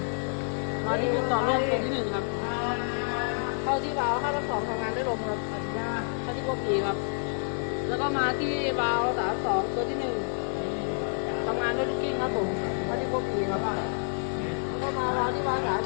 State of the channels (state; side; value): silent; right; 59 dB below the other